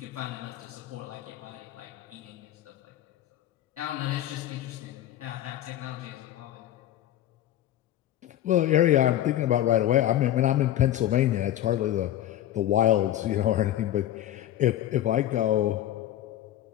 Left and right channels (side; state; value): right; quieter; 12.5 dB